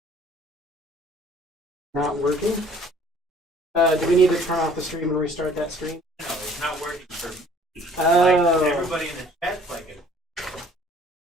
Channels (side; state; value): both; normal; correlation 0.55